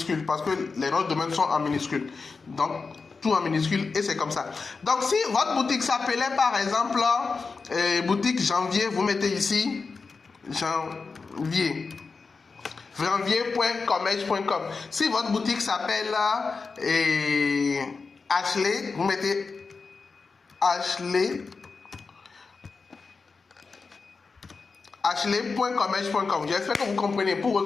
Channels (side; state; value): right; quieter; 4.5 dB